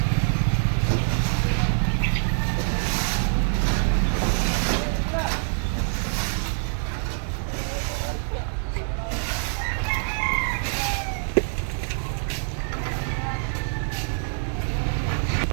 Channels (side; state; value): left; silent; 62 dB below the other